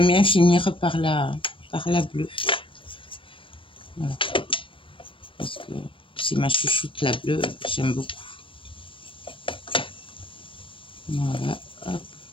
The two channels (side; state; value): right; late; 0.25 ms